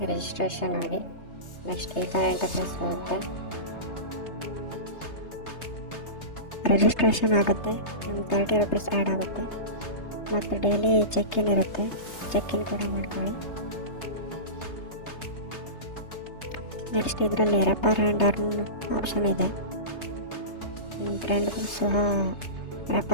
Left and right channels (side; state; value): right; late; 3.3 ms